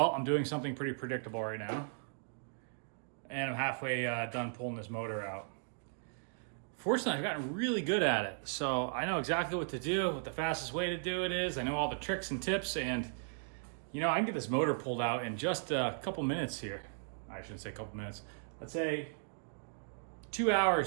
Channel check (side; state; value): left; silent; digital silence